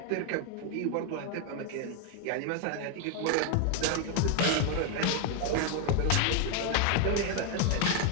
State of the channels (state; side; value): different; both; correlation 0.01